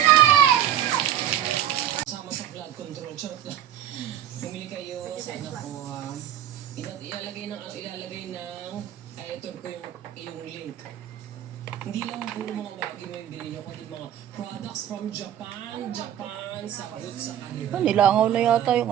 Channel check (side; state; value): left; quieter; 11.0 dB